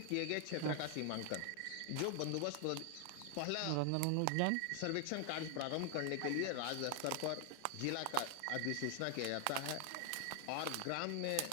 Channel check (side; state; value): both; different; correlation 0.00